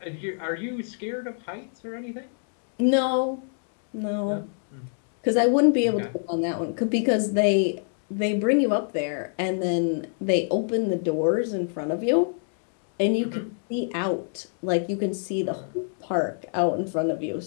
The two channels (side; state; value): right; silent; 61 dB below the other